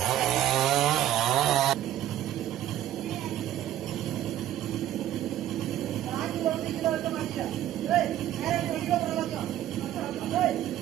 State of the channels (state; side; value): quieter; left; 12.3 dB